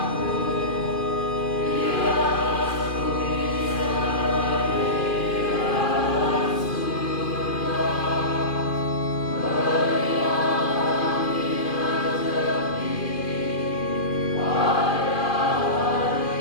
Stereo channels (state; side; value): late; right; 2.4 ms